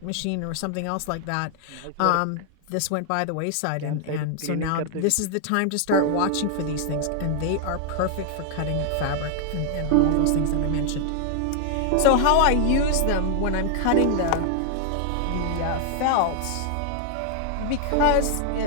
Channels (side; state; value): both; different; correlation 0.00